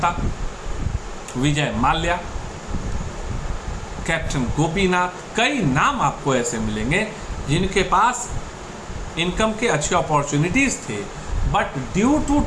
विजय माल्या, कैप्टन गोपीनाथ, कई नाम आपको ऐसे मिलेंगे जिनके पास इनकम के अच्छे अपॉर्चुनिटीज थे, but due to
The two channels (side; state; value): both; identical; correlation 1.00